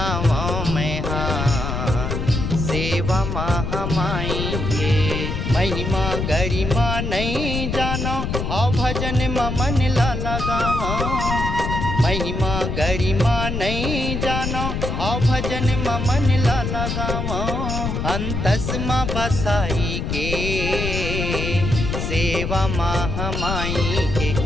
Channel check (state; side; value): noise; left; rumble, 2 dB below the sound